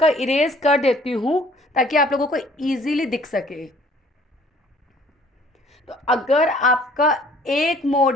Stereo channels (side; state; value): both; normal; correlation 0.56